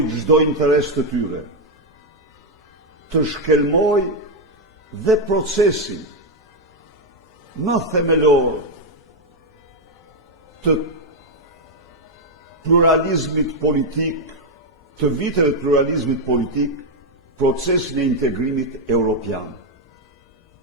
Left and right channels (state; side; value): normal; both; correlation 0.02